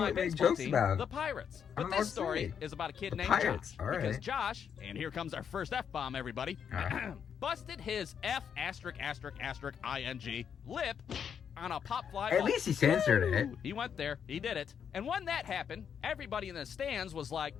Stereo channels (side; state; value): right; quieter; 7.7 dB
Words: what to make baseball jokes team, about. the Pirates. I But don't know this what to story say. is about a kid The named Pirates, Josh. all right. Because Josh, and here comes our first F-bomb, everybody, busted his F***ing lip on a pop fly At ball. least he censored it. Woo! He went there. He did it. And when that happened, everybody in the stands was like,